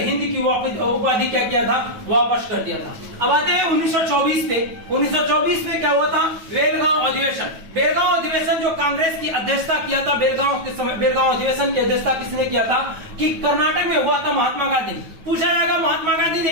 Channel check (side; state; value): left; late; 9.2 ms